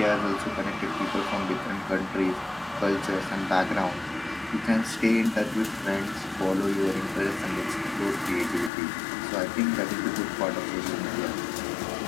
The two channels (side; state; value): right; drops out; at 8.7 s